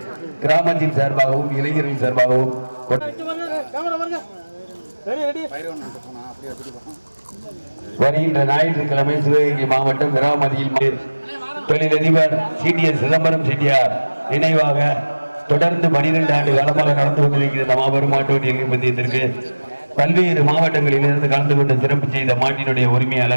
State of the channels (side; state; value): both; inverted; correlation -1.00